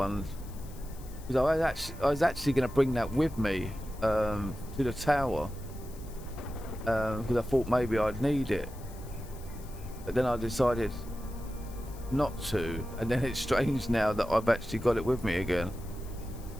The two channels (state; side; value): noise; left; hiss, 21 dB below the sound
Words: Because I was actually going to bring that with me to the tower because I thought maybe I'd need it, but then I decided not to, and then it's strange now that I've actually got it with me again.